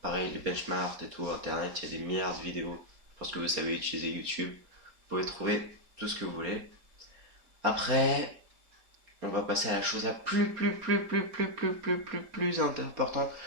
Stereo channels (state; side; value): late; left; 4.3 ms